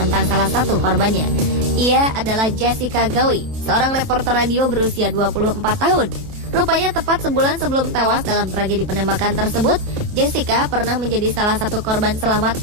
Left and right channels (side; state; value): left; late; 29 ms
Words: salah satu korbannya. Ia adalah Jessica Gawi, seorang reporter radio berusia 24 tahun. Rupanya tepat sebulan sebelum tewas dalam tragedi penembakan tersebut, Jessica pernah menjadi salah satu korban selamat